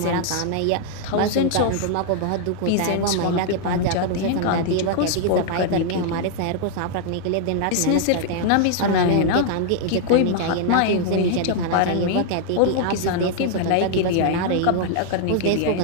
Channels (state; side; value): different; both; correlation 0.00